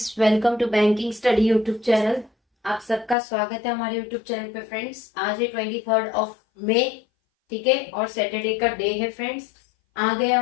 welcome to banking study YouTube channel. आप सबका स्वागत है हमारे यूट्यूब चैनल पे फ्रेंड्स। आज है 23 मई, ठीक है, और सैटरडे का डे है फ्रेंड्स। आ गए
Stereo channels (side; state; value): right; drops out; at 3.2 s